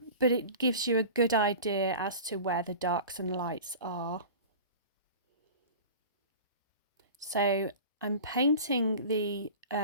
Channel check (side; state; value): both; inverted; correlation -0.36